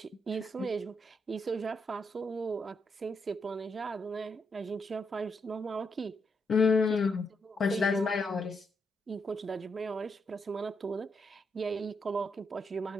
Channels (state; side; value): normal; both; correlation 0.80